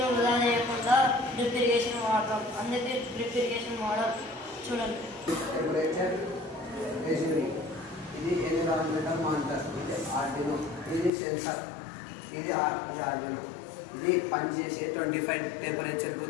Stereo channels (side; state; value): right; drops out; at 11.1 s